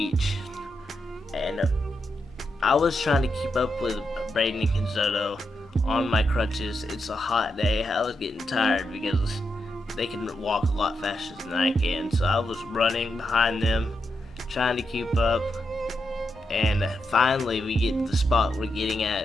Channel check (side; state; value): both; normal; correlation 0.84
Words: And I was trying to keep up with Braden and Kenzoto on my crutches. It's a hot day. I was getting tired because they can walk a lot faster than I can. So I was running behind them, trying to keep up. And finally we get to the spot we're getting